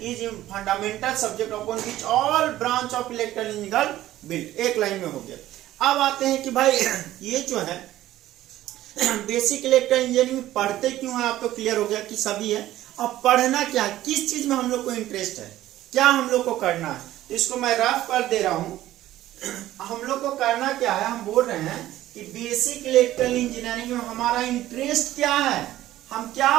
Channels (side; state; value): left; quieter; 14.4 dB